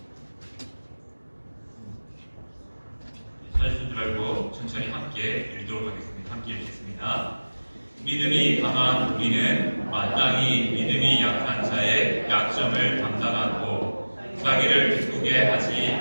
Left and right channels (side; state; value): both; inverted; correlation -1.00